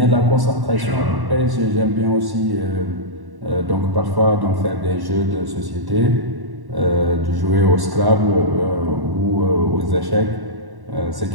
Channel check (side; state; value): left; late; 1.1 ms